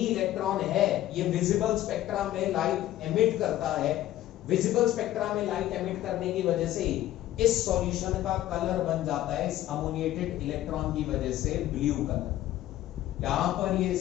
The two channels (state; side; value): quieter; right; 13.9 dB